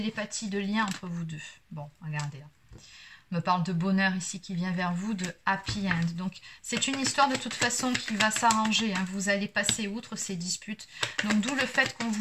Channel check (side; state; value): both; identical; correlation 1.00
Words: de lien entre vous deux. Bon, regardez là. On me parle de bonheur ici qui vient vers vous, de happy end. Donc, c'est une histoire de toute façon qui va s'arranger. Hein. Vous allez passer outre ces disputes. Donc, d'où le fait qu'on